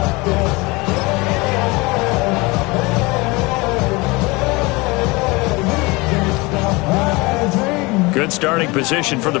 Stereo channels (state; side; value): quieter; right; 24.4 dB